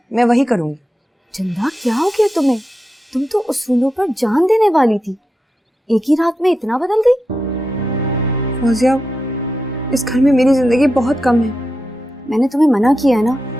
मैं वही करूँगी। चंदा, क्या हो गया तुम्हें? तुम तो उसूलों पर जान देने वाली थी, एक ही रात में इतना बदल गई। फौजिया, इस घर में मेरी जिंदगी बहुत कम है। मैंने तुम्हें मना किया है ना,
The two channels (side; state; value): both; normal; correlation 0.88